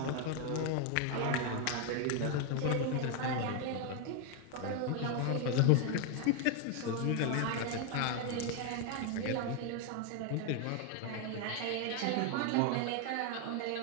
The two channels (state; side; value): different; both; correlation 0.01